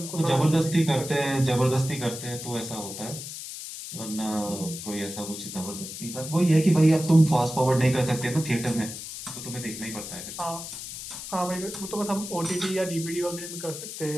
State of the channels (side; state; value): left; noise; hiss, 9 dB below the sound